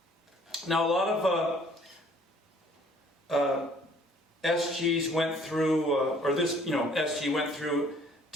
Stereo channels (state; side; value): normal; both; correlation 0.58